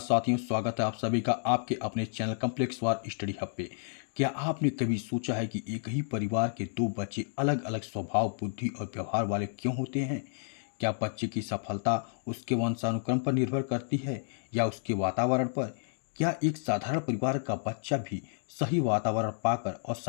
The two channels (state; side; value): silent; right; digital silence